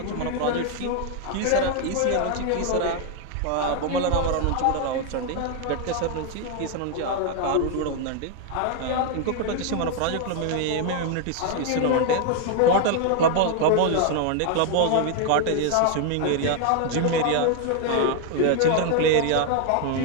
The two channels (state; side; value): different; both; correlation 0.00